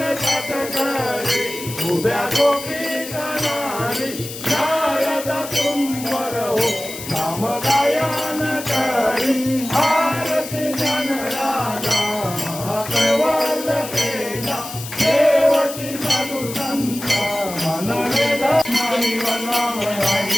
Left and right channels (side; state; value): left; noise; hiss, 11 dB below the sound